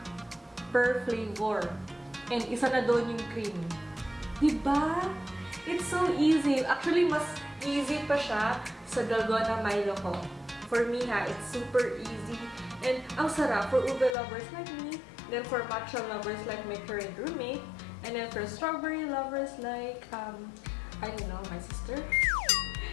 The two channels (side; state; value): right; drops out; at 14.2 s